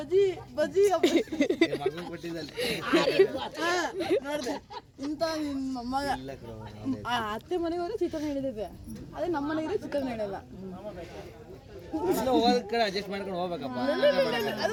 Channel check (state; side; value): identical; both; correlation 1.00